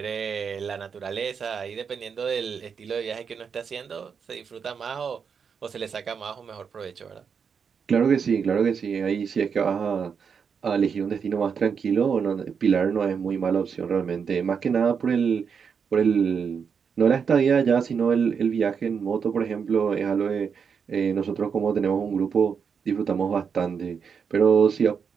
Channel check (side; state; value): left; quieter; 6.4 dB